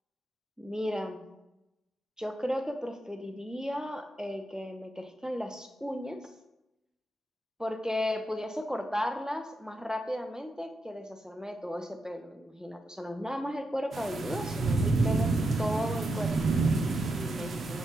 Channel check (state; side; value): normal; both; correlation 0.85